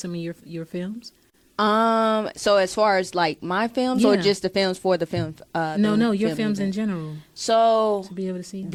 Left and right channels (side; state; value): both; identical; correlation 1.00